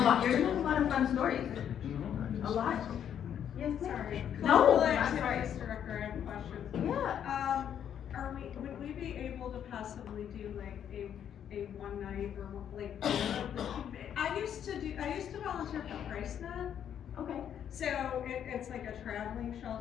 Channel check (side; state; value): right; quieter; 9.3 dB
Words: lot. You're gonna have a lot of fun stories. A lot. Yes, Sorry. No, Cultural I'm sorry. activities director, I have questions. Yeah. Would we be able to possibly do like a one night or like, I used to volunteer for PriceNet. Okay. So it's like a traveling